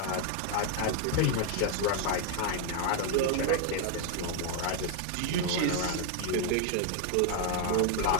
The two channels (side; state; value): both; different; correlation 0.01